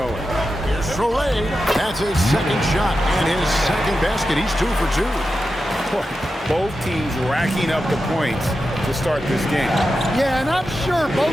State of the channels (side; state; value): both; normal; correlation 0.90